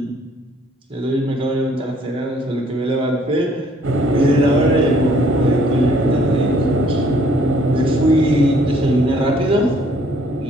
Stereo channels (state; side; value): normal; both; correlation 0.62